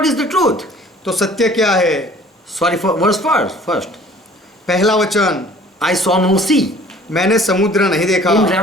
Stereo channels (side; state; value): both; normal; correlation 0.51